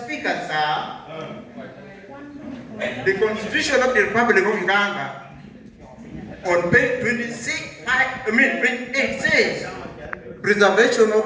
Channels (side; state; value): both; identical; correlation 1.00